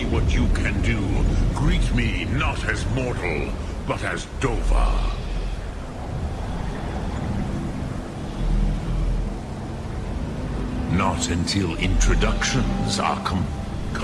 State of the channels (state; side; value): identical; both; correlation 1.00